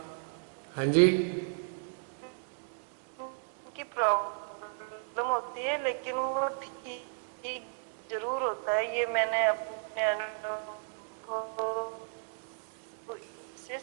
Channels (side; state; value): left; silent; digital silence